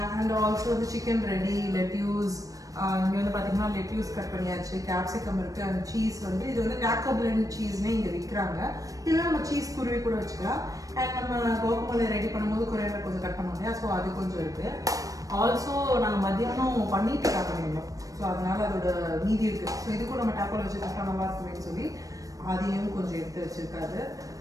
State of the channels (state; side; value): late; left; 0.16 ms